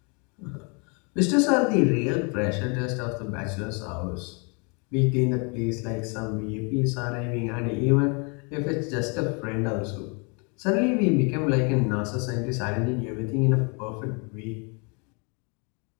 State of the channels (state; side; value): quieter; right; 34.1 dB